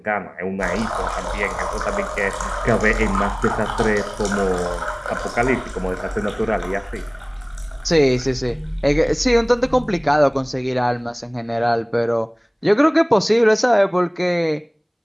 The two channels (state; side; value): identical; both; correlation 1.00